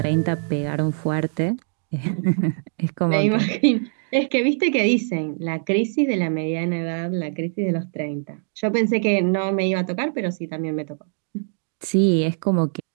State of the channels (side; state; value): left; silent; digital silence